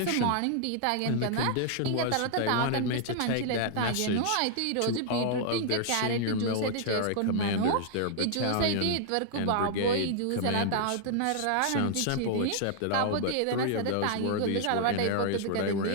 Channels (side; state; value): both; different; correlation -0.01